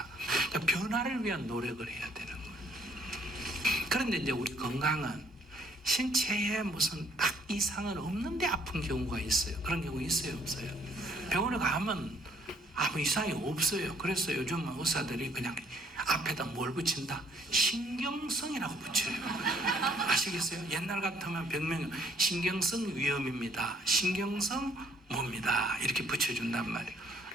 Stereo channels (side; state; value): both; normal; correlation 0.64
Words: 그러니까 변화를 위한 노력을 해야 되는 거예요. 그런데 이제 우리 건강은 신체에 무슨 딱 이상은 없는데 아픈 경우가 있어요. 그런 경우 있어요, 없어요? 병원에 가면 아무 이상이 없어요. 그래서 요즘 의사들이 그냥 앞에다 뭘 붙인다? 신경성이라고 붙여요. 아시겠어요? 옛날 같으면 병명이 신경성 위험입니다. 신경성 뭡니다. 이렇게 붙여준단 말이에요.